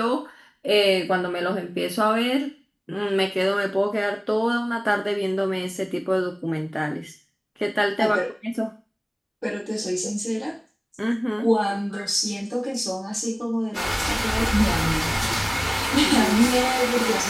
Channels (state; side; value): identical; both; correlation 1.00